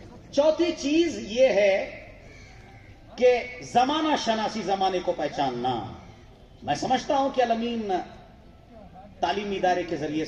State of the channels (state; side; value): identical; both; correlation 1.00